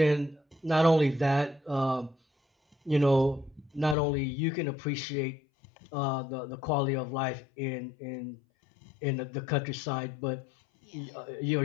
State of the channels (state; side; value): drops out; right; at 4.0 s